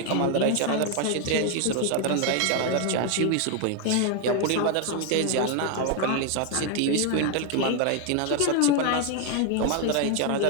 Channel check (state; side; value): different; both; correlation 0.01